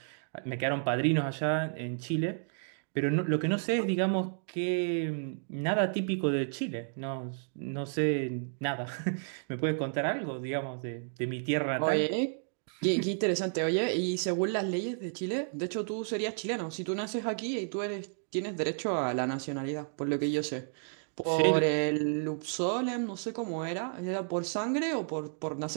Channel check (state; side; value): silent; left; digital silence